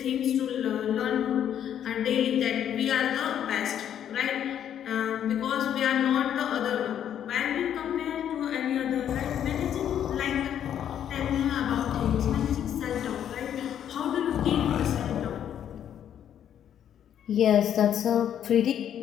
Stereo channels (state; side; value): quieter; right; 9.8 dB